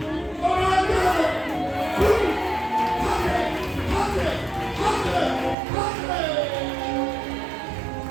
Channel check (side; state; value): left; drops out; at 5.6 s